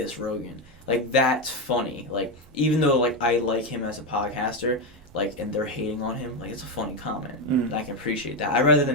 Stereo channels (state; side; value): normal; both; correlation 0.10